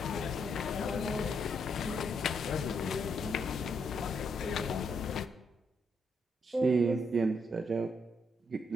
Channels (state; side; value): normal; both; correlation 0.76